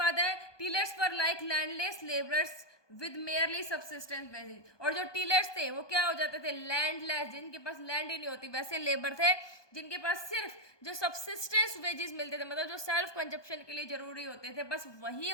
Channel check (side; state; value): right; late; 1.2 ms